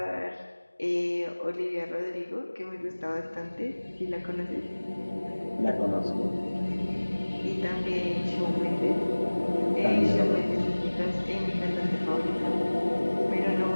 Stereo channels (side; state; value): both; inverted; correlation -1.00